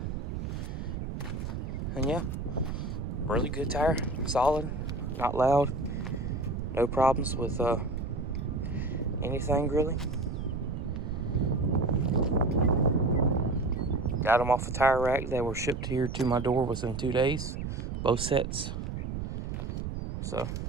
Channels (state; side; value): noise; right; rumble, 4 dB below the sound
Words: And yeah, really good tire. Solid, not loud. No problems with anything really. Got them off the tire rack. They were shipped here to my door within 2 days. Both sets. So, all